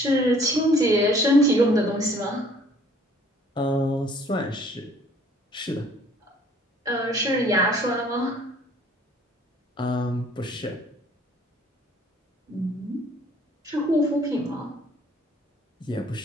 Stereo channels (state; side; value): normal; both; correlation 0.57